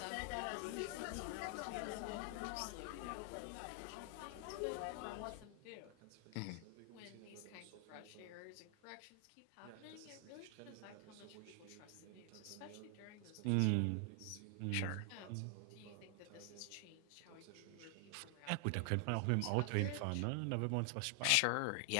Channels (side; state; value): both; different; correlation 0.00